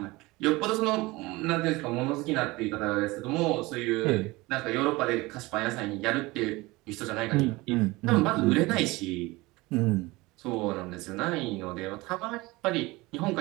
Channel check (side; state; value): left; quieter; 21.8 dB